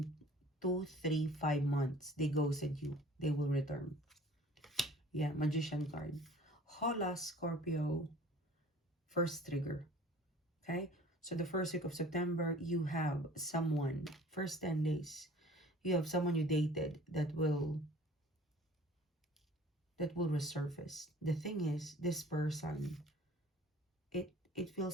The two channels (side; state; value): both; normal; correlation 0.48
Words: 2, 3, 5 months. They ghosted you. They will return. Yeah, Magician card. Hola, Scorpio. First trigger. Okay? So the first week of September, you have someone, first 10 days, you have someone you dated that will resurface. The thing is, this person, it